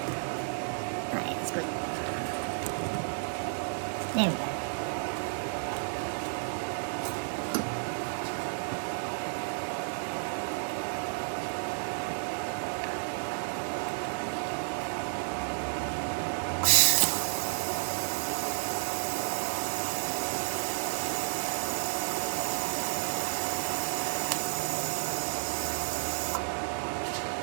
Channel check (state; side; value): silent; left; digital silence